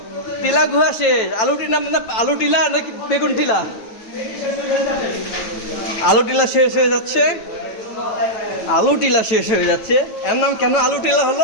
টিলা গুহা শেষ। আলুটির নাম না আলু টিলা নাকি বেগুন টিলা? আলু টিলা শেষ হয়ে যাচ্ছে, আলু টিলা শেষ হয়ে যাচ্ছে। এর নাম কেন আলু টিলা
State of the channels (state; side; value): late; right; 9.2 ms